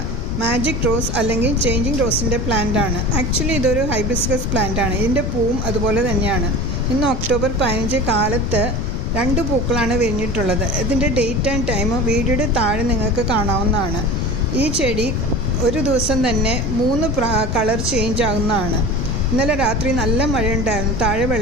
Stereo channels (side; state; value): left; noise; rumble, 3 dB below the sound